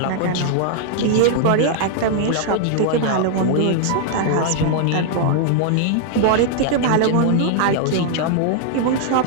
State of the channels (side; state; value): both; different; correlation -0.01